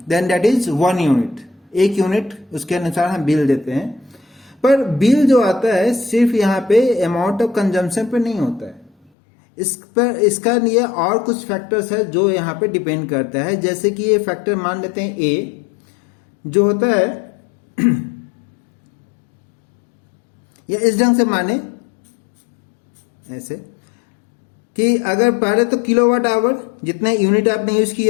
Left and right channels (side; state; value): right; drops out; at 9.1 s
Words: then that is 1 unit, 1 unit उसके अनुसार हम bill देते हैं। पर bill जो आता है सिर्फ यहाँ पे अमाउंट ऑफ कंजम्पशन पे नहीं होता है, इस पर इसका लिए और कुछ फैक्टर्स है जो यहाँ पे डिपेंड करता है। जैसे कि ये फैक्टर मान लेते हैं ए जो होता है या इस ढंग से माने ऐसे कि अगर पहले तो किलोवाट आवर जितने यूनिट आपने यूज